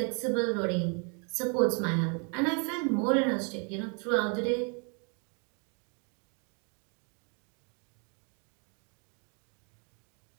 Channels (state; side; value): quieter; left; 36.6 dB